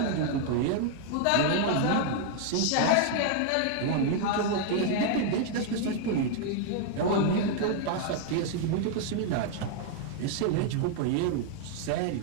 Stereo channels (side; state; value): both; different; correlation 0.00